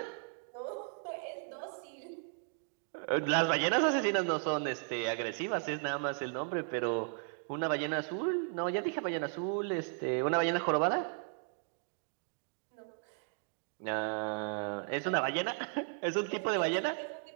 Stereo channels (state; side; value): silent; left; 54 dB below the other